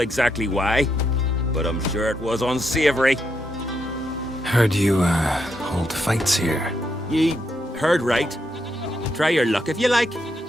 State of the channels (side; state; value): both; normal; correlation 0.80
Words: why, but I'm sure it was unsavory. Heard you, hold fights here. Ye heard right. Try your luck if you like.